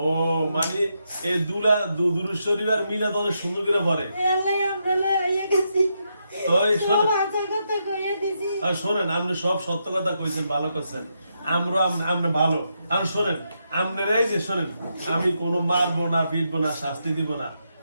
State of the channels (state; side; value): inverted; both; correlation -0.82